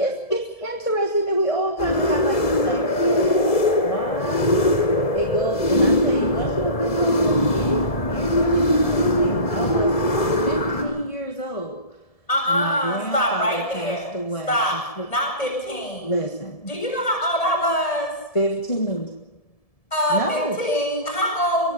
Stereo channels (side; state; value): right; late; 1.7 ms